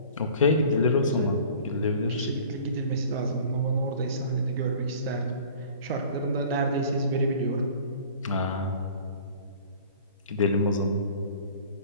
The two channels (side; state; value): both; inverted; correlation -0.46